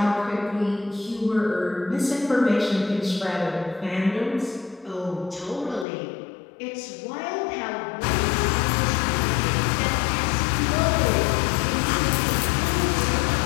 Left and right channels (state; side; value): drops out; right; at 5.9 s